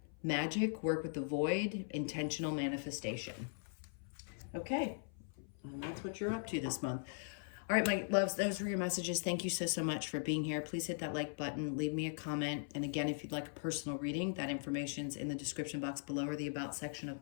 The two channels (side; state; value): right; silent; 51 dB below the other